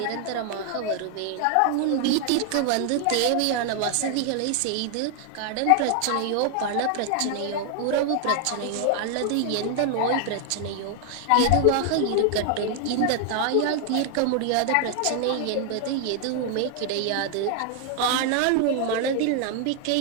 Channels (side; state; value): both; different; correlation 0.00